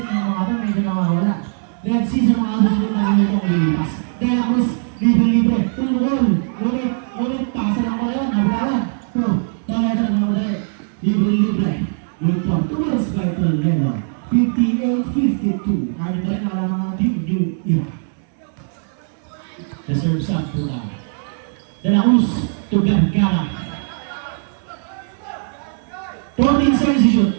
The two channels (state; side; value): silent; left; 64 dB below the other